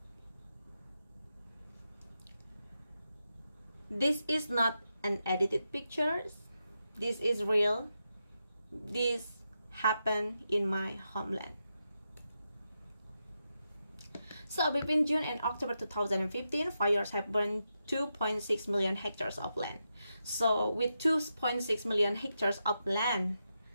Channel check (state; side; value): inverted; both; correlation -0.87